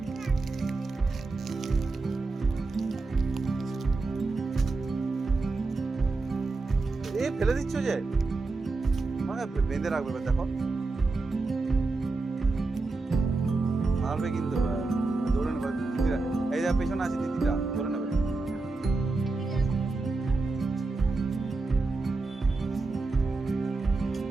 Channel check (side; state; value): left; quieter; 3.6 dB